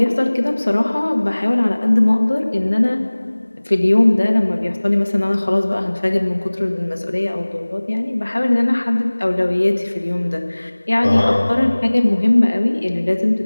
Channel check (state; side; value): inverted; both; correlation -1.00